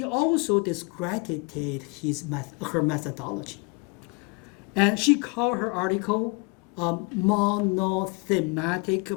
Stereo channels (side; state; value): right; quieter; 30.2 dB